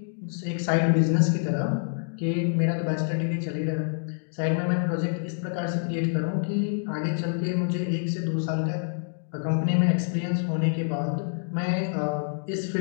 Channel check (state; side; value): silent; right; digital silence